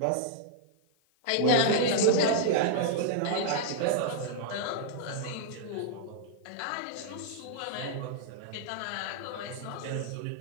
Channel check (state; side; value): different; both; correlation -0.01